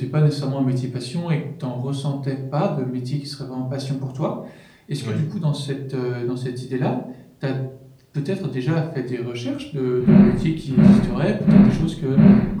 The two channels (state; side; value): identical; both; correlation 1.00